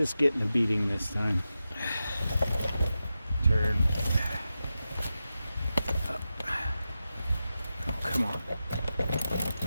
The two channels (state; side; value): inverted; both; correlation -0.91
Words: getting a beating this time. Turn. Up. Oh, come on.